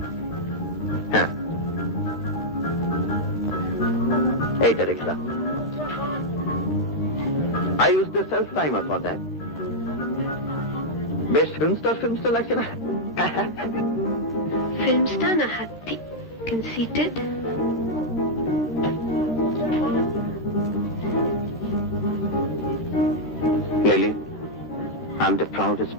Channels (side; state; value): both; normal; correlation -0.03